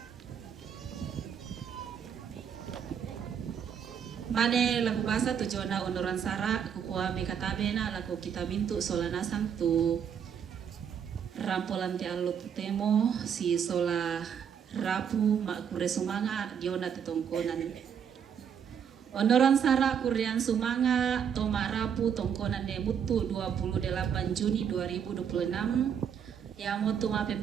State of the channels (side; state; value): left; quieter; 7.9 dB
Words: Mane lagu bahasa tujuana onoran sara kukua mekatabe na lagu kita mintu solanasang tu rampolan ti allo temo si sola rapu makure sumanga diona tetongkonan onoran sara kurian sumanga toma rapu tongkonan ne mutu 28 Juni 2026 ya motu